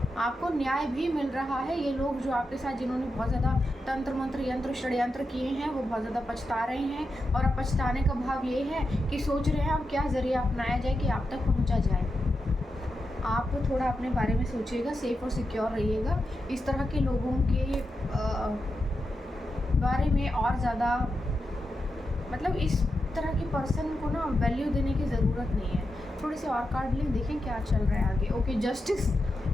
आपको न्याय भी मिल रहा है। ये लोग जो आपके साथ जिन्होंने बहुत ज़्यादा तंत्र मंत्र यंत्र षड्यंत्र किए हैं वो बहुत ज़्यादा पछता रहे हैं और अब पछताने का भाव ये है कि सोच रहे हैं अब क्या ज़रिया अपनाया जाए कि आप तक पहुंचा जाए। आप थोड़ा अपने बारे में सोचिएगा, सेफ और सिक्योर रहिएगा। इस तरह के लोगों के बारे में और ज़्यादा मतलब इस तरह के पर्सन को ना वैल्यू देने की ज़रूरत नहीं है। थोड़े से और कार्ड लें, देखें क्या चल रहा है आगे। Okay, justice.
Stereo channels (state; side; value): normal; both; correlation 0.88